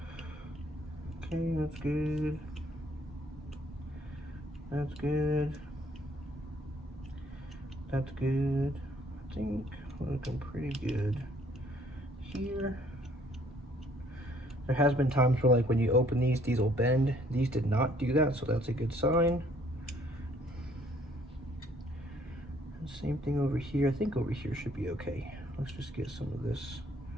Okay, that's good. That's good. That's good. I think we're looking pretty good here. There has been times where like when you open these will bend. These did not do that, so that's a good sign. Same thing over here. I think over here should be okay. Let's just get some of this.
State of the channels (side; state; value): both; normal; correlation 0.62